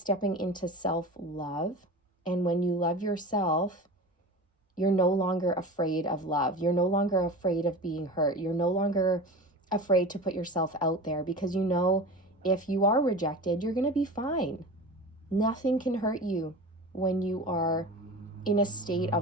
into self-love. And when you love yourself, you're no longer afraid of love. You're no longer afraid of being hurt. You're no longer afraid to put yourself out there, because you know if you are rejected, you're going to be fine. Nothing can hurt you when you are in a state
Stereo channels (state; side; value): normal; both; correlation 0.32